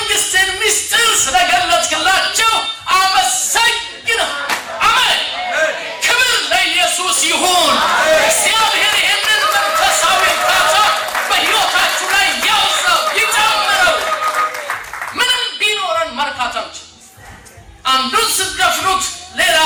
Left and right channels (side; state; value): both; identical; correlation 1.00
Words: ምስጢር ስለገለጥክላቸው አመሰግናለሁ። አሜን። ክብር ለኢየሱስ ይሁን። እግዚአብሔር ይህንን መንፈሳዊ እርካታ በሕይወታችሁ ላይ ያውዛው፣ ይጨምረው። ምንም ቢኖረን መርካት አንችልም። አንዱን ስትደፍኑት ሌላ